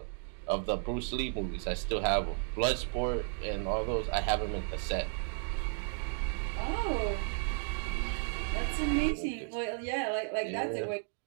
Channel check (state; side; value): silent; left; 55 dB below the other